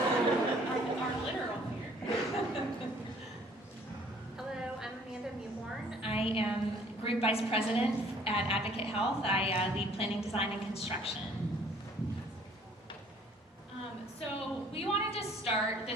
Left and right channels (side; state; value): both; normal; correlation 0.57